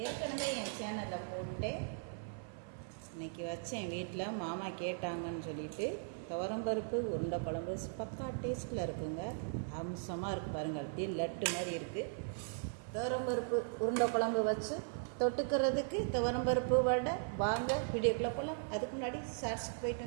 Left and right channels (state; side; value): silent; left; 52 dB below the other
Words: ஏற்கனவே என் சேனலில் போட்டேன், இன்னைக்கு வச்சேன் வீட்டில். மாமா கேட்டாங்கன்னு சொல்லிட்டு துவரம்பருப்பு உருண்டை குழம்பு பக்கா டேஸ்ட்டில் இருக்குங்க. அம்சமாக இருக்குது பாருங்கள், அப்படியே லட்டு மாதிரி இருக்குது. துவரம்பருப்பு உருண்டை குழம்பு வச்சு தொட்டுக்கிறதுக்கு துவரம்பருப்பு வடை. வாங்க வீடியோக்குள்ளே போகலாம். அதுக்கு முன்னாடி ஷார்ட்ஸுக்கு போயிட்டு